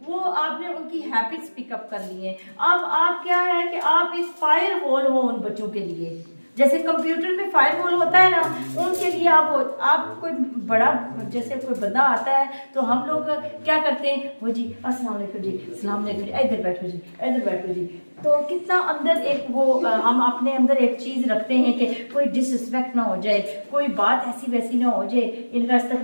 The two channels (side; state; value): both; inverted; correlation -1.00